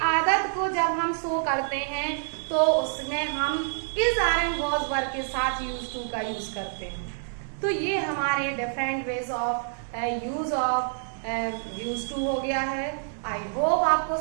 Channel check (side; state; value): left; silent; digital silence